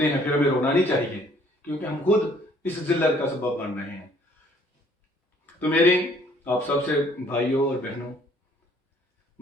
ہیں، پھر ہمیں رونا نہیں چاہیے، کیونکہ ہم خود اس ذلت کا سبب بن رہے ہیں۔ تو میری آپ سب سے بھائیوں اور بہنوں،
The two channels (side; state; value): both; normal; correlation 0.60